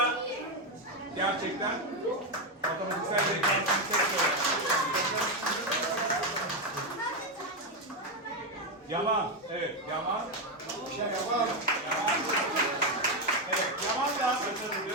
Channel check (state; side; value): normal; both; correlation 0.07